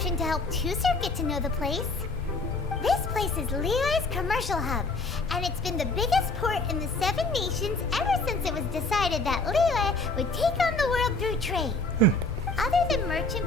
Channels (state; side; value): quieter; right; 3.1 dB